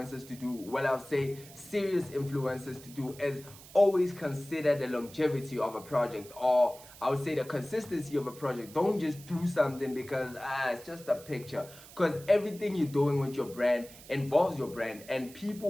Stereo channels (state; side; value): noise; right; hiss, 19 dB below the sound